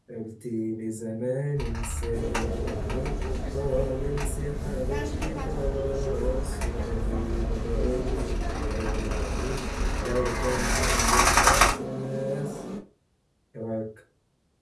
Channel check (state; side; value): identical; both; correlation 1.00